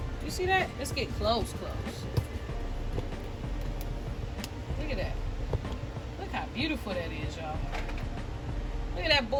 You see that? Let's get close. Look at that. Look how beautiful that is, y'all. Look at that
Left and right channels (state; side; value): identical; both; correlation 1.00